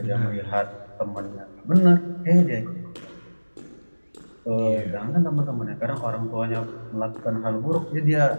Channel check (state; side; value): inverted; both; correlation -1.00